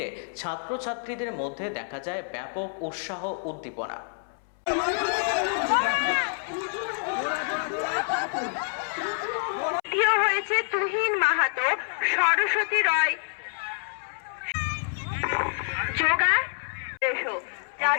ছাত্রছাত্রীদের মধ্যে দেখা যায় ব্যাপক উৎসাহ উদ্দীপনা। হয়েছে তুহিন মাহাতো, সরস্বতী রয়, যোগা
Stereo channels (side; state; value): right; silent; 60 dB below the other